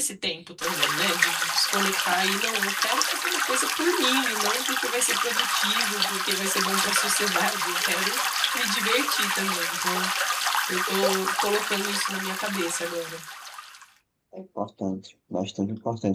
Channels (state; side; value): identical; both; correlation 1.00